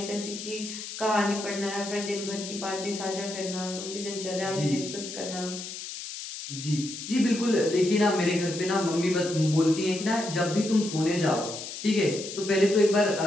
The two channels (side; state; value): left; noise; hiss, 9 dB below the sound